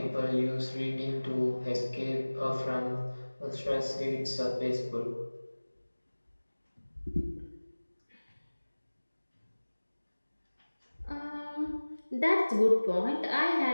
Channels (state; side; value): inverted; both; correlation -1.00